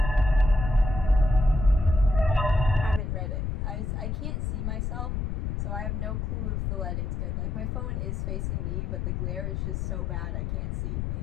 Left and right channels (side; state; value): left; noise; rumble, 2 dB below the sound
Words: haven't read it. I can't see myself, so I have no clue if the lighting's good. Like, my phone is facing me, but the glare is just so bad I can't see.